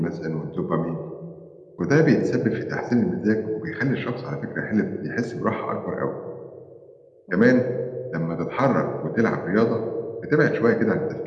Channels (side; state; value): both; identical; correlation 1.00